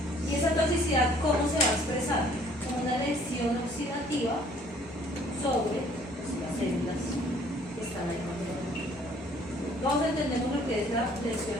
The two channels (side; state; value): both; normal; correlation 0.58